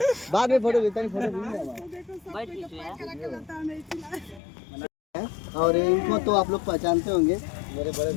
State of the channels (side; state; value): right; drops out; at 4.4 s